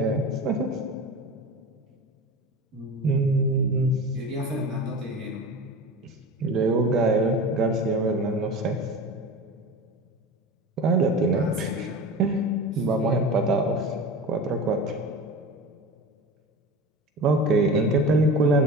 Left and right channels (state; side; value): normal; both; correlation 0.32